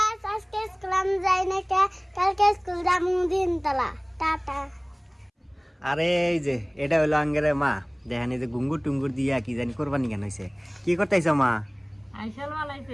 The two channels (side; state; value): both; identical; correlation 1.00